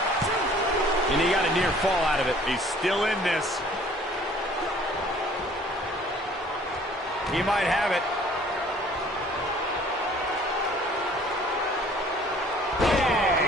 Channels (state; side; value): normal; both; correlation 0.54